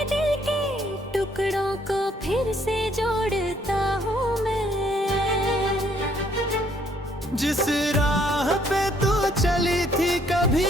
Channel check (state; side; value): normal; both; correlation 0.66